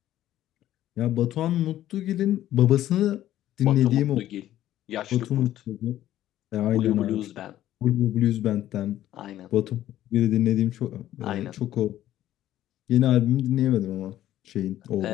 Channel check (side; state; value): right; quieter; 13.1 dB